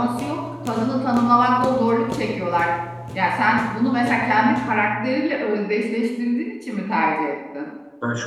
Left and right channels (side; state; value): both; identical; correlation 1.00